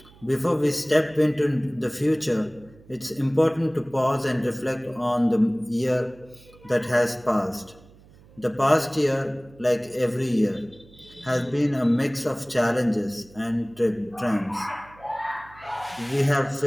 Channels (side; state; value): right; noise; hum, 25 dB below the sound